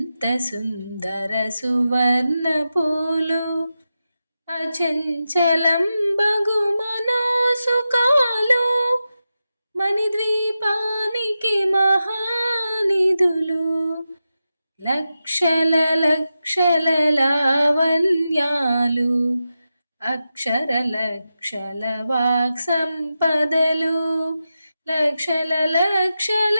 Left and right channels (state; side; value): inverted; both; correlation -0.91